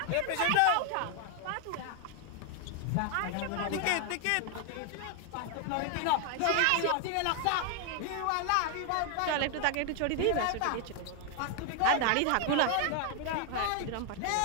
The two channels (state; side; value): different; both; correlation 0.00